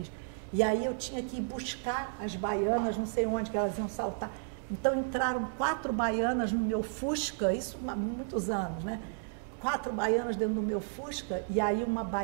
E aí eu tinha que ir buscar as baianas, não sei onde que elas iam saltar. Então entraram 4 baianas no meu Fusca, isso há muitos anos, né? 4 baianas dentro do meu Fusca, e aí uma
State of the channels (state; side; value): silent; left; digital silence